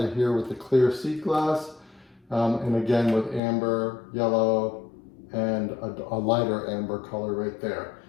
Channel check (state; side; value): drops out; right; at 3.4 s